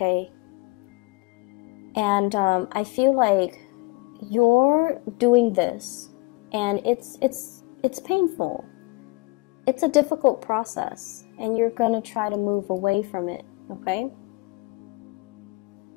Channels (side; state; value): right; quieter; 24.7 dB